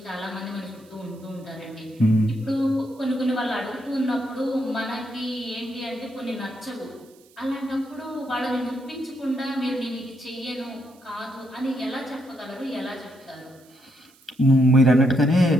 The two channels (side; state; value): right; noise; hiss, 29 dB below the sound